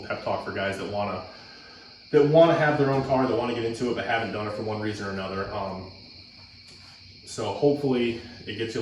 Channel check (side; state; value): both; identical; correlation 1.00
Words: pep talk for guys that wanna have their own car, that wanna get into it, but haven't done it for one reason or another. So hopefully it gets you a